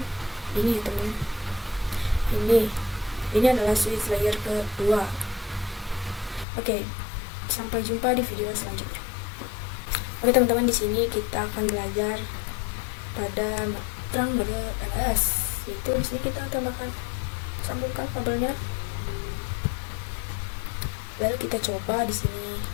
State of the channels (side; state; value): right; drops out; at 6.5 s